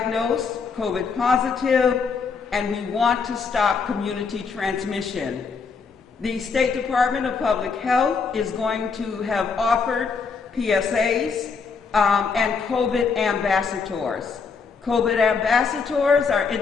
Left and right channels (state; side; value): quieter; right; 5.3 dB